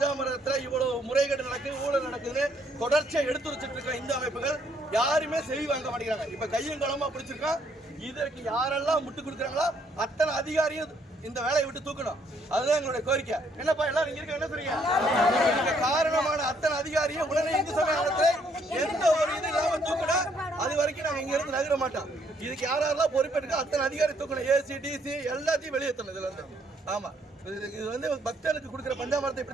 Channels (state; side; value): normal; both; correlation 0.69